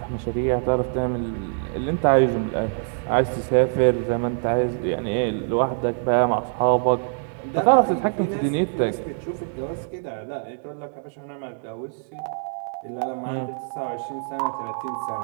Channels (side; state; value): left; silent; digital silence